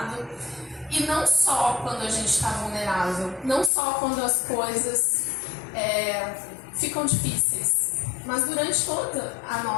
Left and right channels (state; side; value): drops out; right; at 3.7 s